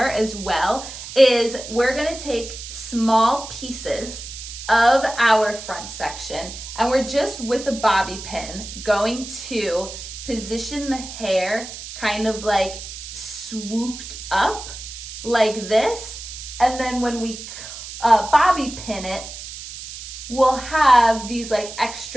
as well is we're going to take small pieces of our front section, and we're just with a bobby pin going to position the hair kind of like swooped up like this, and then when we bobby pin it, we'll have these like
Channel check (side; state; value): right; noise; hiss, 11 dB below the sound